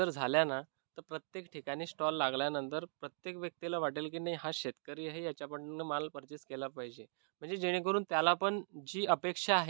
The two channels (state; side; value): silent; left; digital silence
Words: झाल्या ना तर प्रत्येक ठिकाणी स्टॉल लागल्यानंतर प्रत्येक व्यक्तीला वाटेल की नाही हा शेतकरी आहे, याच्याकडनं माल परचेस केला पाहिजे. म्हणजे जेणेकरून त्याला पण जी अपेक्षा